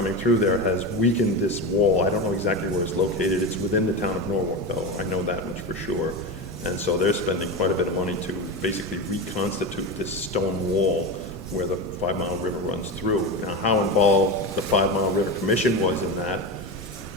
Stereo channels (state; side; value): normal; both; correlation 0.20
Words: through there has weakened this wall. I don't know exactly where it's located. It's within the town of Norwalk, though. I know that much for sure. And so they're spending quite a bit of money to basically reconstitute this stone wall where the 5 Mile River runs through. Now, how involved the 5 Mile River Commission was in that,